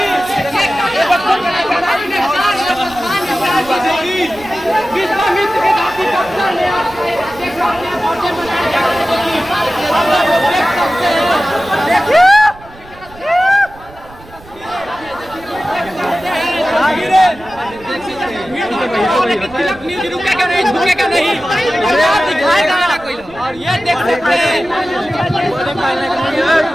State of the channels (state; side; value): noise; right; rumble, 21 dB below the sound